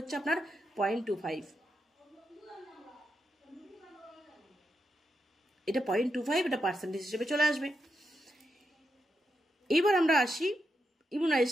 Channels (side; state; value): both; normal; correlation 0.85